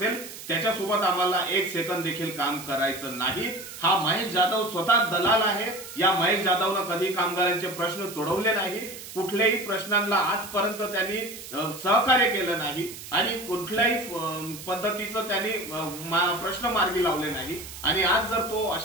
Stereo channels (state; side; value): noise; right; hiss, 13 dB below the sound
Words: त्याच्यासोबत आम्हाला एक सेकंद देखील काम करायचं नाही। हा महेश जाधव स्वतः दलाल आहे। या महेश जाधवनं कधी कामगारांचे प्रश्न सोडवले नाही, कुठल्याही प्रश्नांना आजपर्यंत त्यांनी सहकार्य केलं नाही आणि कुठल्याही पद्धतीचं त्यांनी प्रश्न मार्गी लावले नाही। आणि आज जर तो